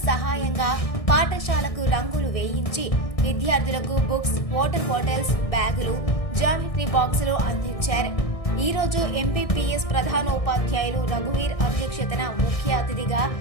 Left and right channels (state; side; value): late; right; 1.6 ms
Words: సహాయంగా పాఠశాలకు రంగులు వేయించి విద్యార్థులకు బుక్స్, వాటర్ బాటిల్స్, బ్యాగులు, జామెట్రీ బాక్సులు అందించారు. ఈ రోజు ఎంపీపీఎస్ ప్రధానోపాధ్యాయులు రఘువీర్ అధ్యక్షతన ముఖ్య అతిథిగా